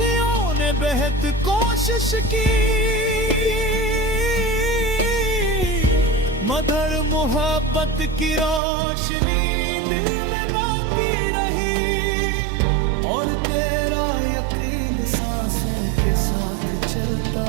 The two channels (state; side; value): drops out; left; at 8.6 s